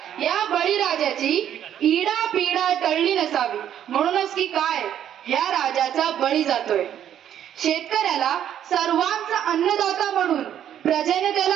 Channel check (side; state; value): left; quieter; 10.3 dB